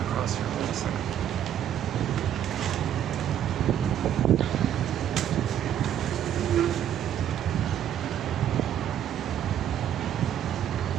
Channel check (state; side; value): quieter; left; 10.2 dB